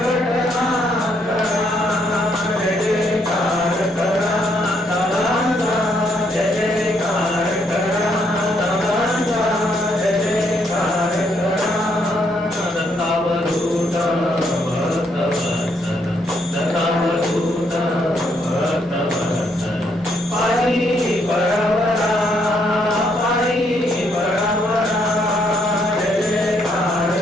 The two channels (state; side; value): normal; both; correlation 0.73